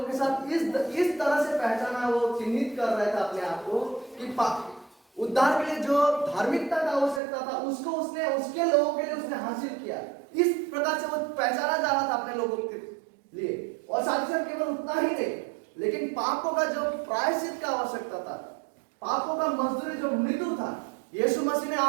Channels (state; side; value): drops out; left; at 7.2 s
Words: के साथ इस तरह से पहचाना, वो चिन्हित कर रहा था अपने आप को कि उद्धार के लिए जो धार्मिकता का आवश्यकता था उसको उसने उसके लोगों के लिए उसने हासिल किया। इस प्रकार से वो पहचाना जा रहा था अपने लोगों के लिए। और साथ ही साथ केवल उतना ही नहीं, लेकिन पापों का जो प्रायश्चित का आवश्यकता था, पापों का मजदूरी जो मृत्यु था, यीशु मसीह ने